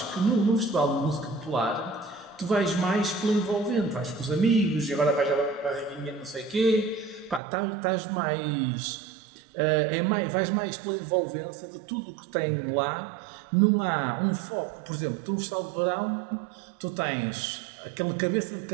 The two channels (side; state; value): left; drops out; at 7.4 s